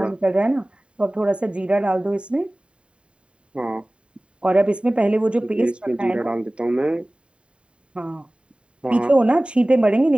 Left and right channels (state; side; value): late; left; 0.055 ms